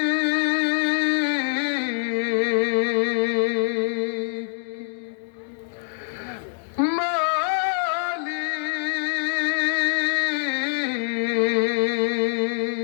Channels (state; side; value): silent; right; digital silence